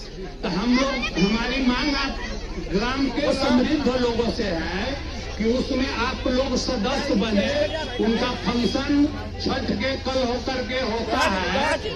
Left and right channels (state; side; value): identical; both; correlation 1.00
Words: तो हम लोग, हमारी मांग आप ग्राम के समृद्ध लोगों से है कि उसमें आप लोग सदस्य बने। उनका फंक्शन छठ के कल होकर के होता है,